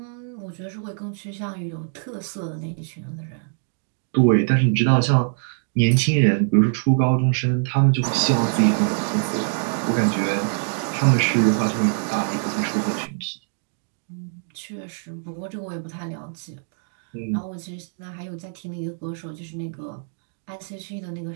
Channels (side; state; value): left; silent; digital silence